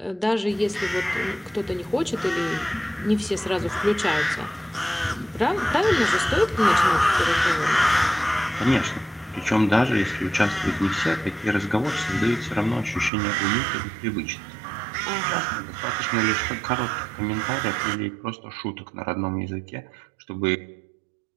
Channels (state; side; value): drops out; left; at 13.1 s